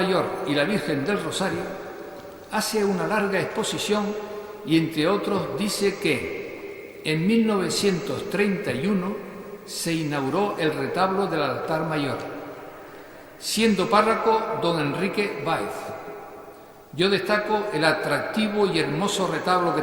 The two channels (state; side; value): identical; both; correlation 1.00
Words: y la Virgen del Rosario, hace una larga exposición y, entre otros, dice que en 1931 se inauguró el retablo del altar mayor, siendo párroco don Enrique Báez. Yo destaco el atractivo y hermoso retablo que